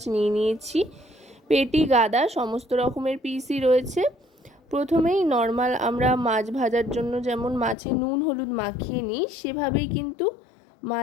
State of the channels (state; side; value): drops out; right; at 7.8 s